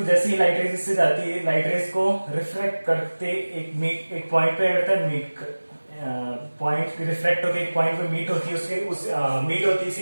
जैसे ही लाइट रेस इससे जाती है, लाइट रेस को रिफ्लेक्ट करते एक पॉइंट पे रहता है, पॉइंट रिफ्लेक्ट होकर एक पॉइंट पे मीट होती है, मीट होती है,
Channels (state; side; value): inverted; both; correlation -1.00